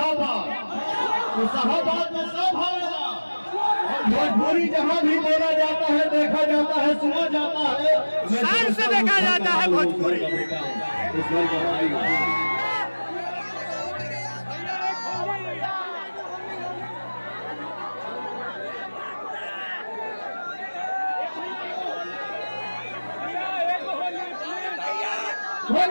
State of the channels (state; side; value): inverted; both; correlation -1.00